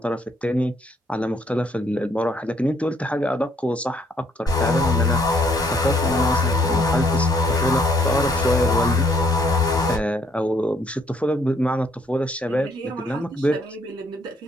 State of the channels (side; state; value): both; normal; correlation 0.67